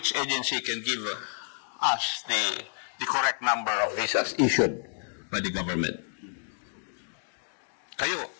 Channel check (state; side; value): silent; right; digital silence